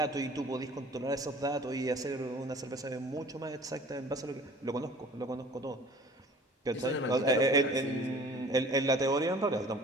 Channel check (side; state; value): both; normal; correlation 0.47